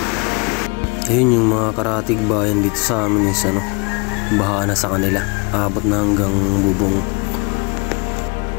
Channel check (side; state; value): right; quieter; 30.0 dB